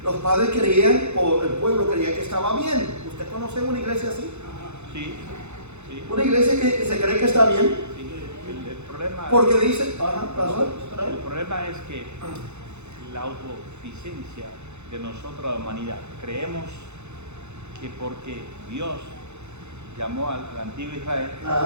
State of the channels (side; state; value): left; late; 0.82 ms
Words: los padres creían, o el pueblo creía que estaba bien. ¿Usted conoce una iglesia así? Sí. Una iglesia que se cree que está bien. Sí. El problema, porque dice, el problema es que la autosuficiencia de nosotros, la humanidad, creemos que porque Dios llamó al antiguo Israel,